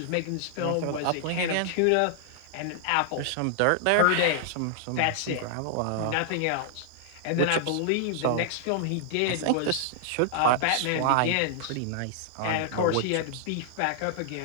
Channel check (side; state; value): both; different; correlation -0.01